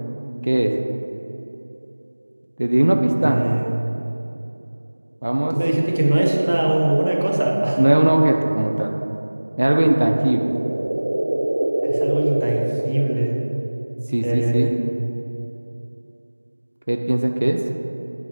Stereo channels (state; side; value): inverted; both; correlation -1.00